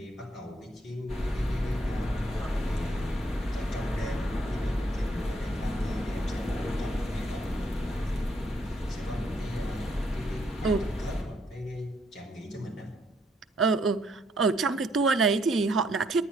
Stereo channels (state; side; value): normal; both; correlation 0.71